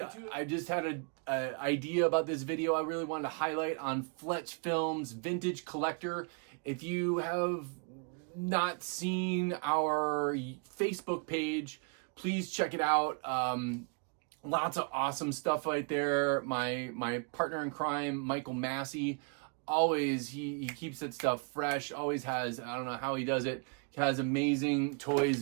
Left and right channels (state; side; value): quieter; left; 39.2 dB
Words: to it. I just had an idea about this video I really wanted to highlight on Fletch Films Vintage Collector. If you have not seen our Facebook page, please check it out. Lots of awesome stuff right there. My partner in crime, Michael Massey, always, he keeps that stuff fresh, always has, I don't know how he does it. He has amazing